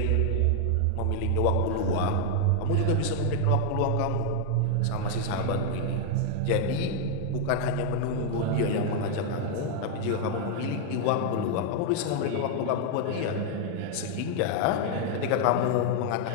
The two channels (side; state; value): both; different; correlation 0.00